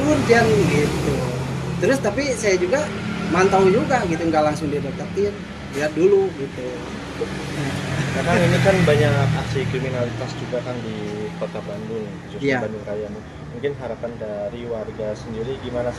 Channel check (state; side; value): identical; both; correlation 1.00